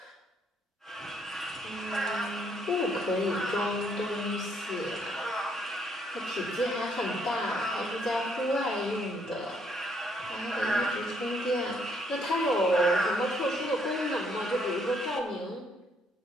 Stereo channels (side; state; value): both; normal; correlation 0.70